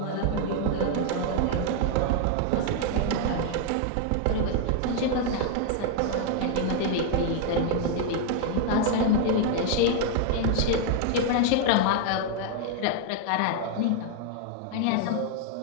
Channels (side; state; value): both; different; correlation 0.00